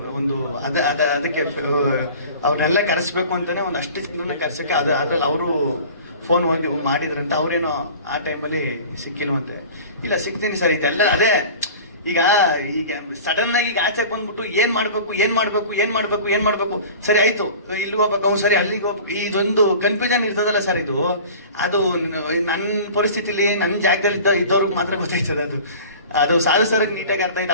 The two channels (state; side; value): inverted; both; correlation -0.40